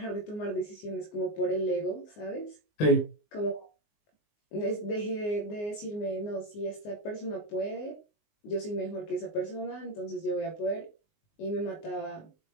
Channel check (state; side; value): late; right; 19 ms